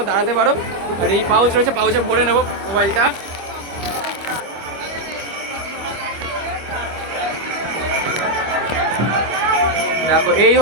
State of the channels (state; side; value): late; left; 25 ms